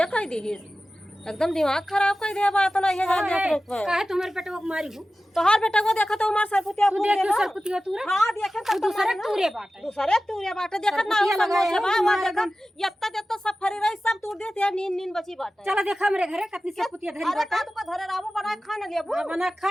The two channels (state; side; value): normal; both; correlation 0.95